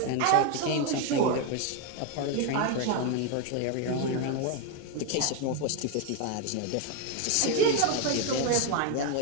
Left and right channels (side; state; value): both; different; correlation 0.01